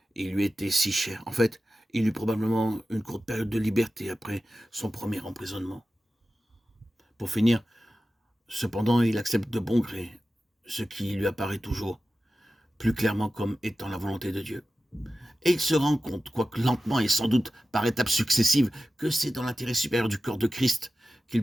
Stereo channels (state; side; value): normal; both; correlation 0.94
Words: Et il lui était si cher. En fait, il eut probablement une courte période de liberté après son premier emprisonnement. Pour finir, cependant, il accepte de bon gré ce qui lui apparaît toujours plus clairement comme étant la volonté de Dieu. Et il se rend compte, quoique lentement et sans doute par étapes successives, que c'est dans l'intérêt supérieur du corps de Christ qu'il